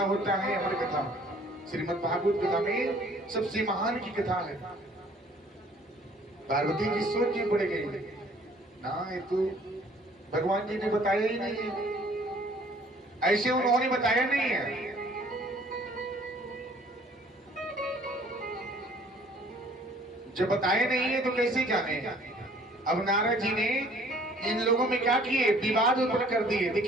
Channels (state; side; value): normal; both; correlation 0.56